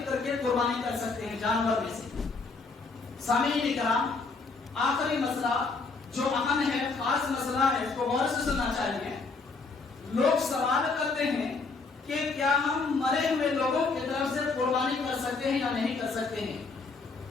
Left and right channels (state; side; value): quieter; right; 4.2 dB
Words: کر کے قربانی کر سکتے ہیں جانور میں سے۔ سامعین کرام، آخری مسئلہ جو اہم ہے، خاص مسئلہ ہے، اس کو غور سے سننا چاہیے۔ لوگ سوال کرتے ہیں کہ کیا ہم مرے ہوئے لوگوں کی طرف سے قربانی کر سکتے ہیں یا نہیں کر سکتے ہیں،